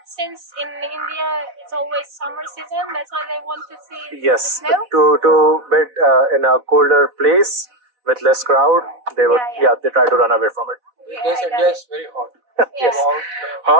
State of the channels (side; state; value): left; late; 4.0 ms